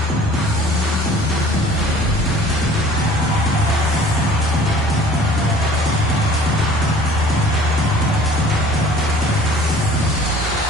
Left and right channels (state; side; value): normal; both; correlation 0.50